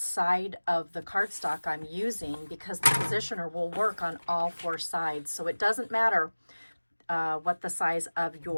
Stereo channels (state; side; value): inverted; both; correlation -1.00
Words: side of the cardstock I'm using, because the positioner will work on all four sides. So it doesn't matter what the size of